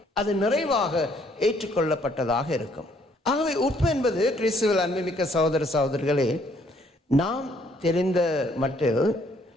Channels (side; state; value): both; normal; correlation 0.65